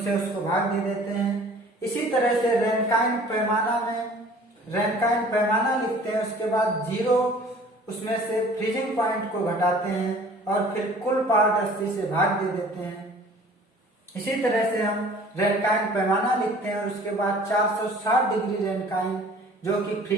उसको भाग दे देते हैं। इसी तरह से रैनकाइन पैमाना लिखते हैं, उसके बाद 0 उसमें से फ्रीजिंग पॉइंट को घटाते हैं और फिर कुल पार्ट 80 से भाग दे देते हैं। इसी तरह से हम रैनकाइन पैमाना लिखते हैं और उसके बाद 460 डिग्री रैनकाइन जो कि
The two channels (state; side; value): normal; both; correlation 0.49